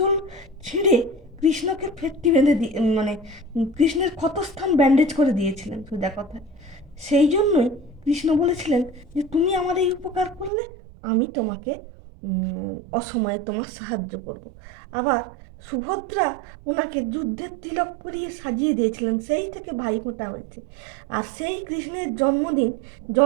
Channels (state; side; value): drops out; left; at 10.5 s